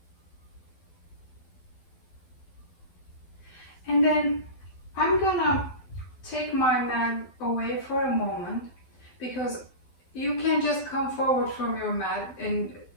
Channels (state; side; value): late; right; 12 ms